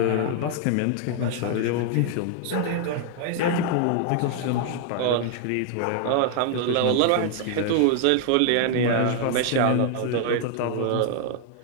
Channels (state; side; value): different; both; correlation 0.00